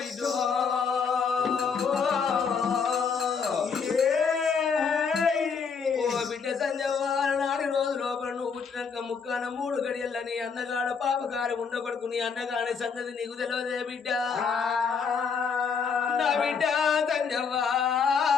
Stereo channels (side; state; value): right; quieter; 5.9 dB